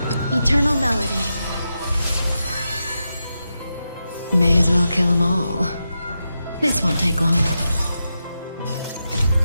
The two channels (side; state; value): both; inverted; correlation -0.88